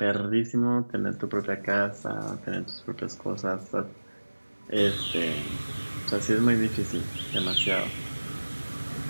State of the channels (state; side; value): inverted; both; correlation -1.00